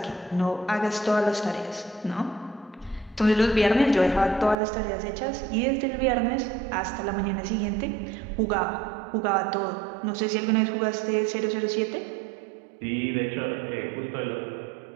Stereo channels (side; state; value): left; drops out; at 4.5 s